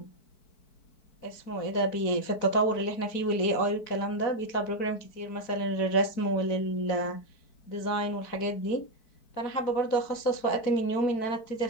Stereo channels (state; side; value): late; right; 4.6 ms